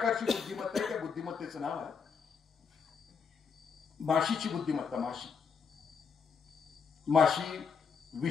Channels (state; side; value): quieter; right; 6.0 dB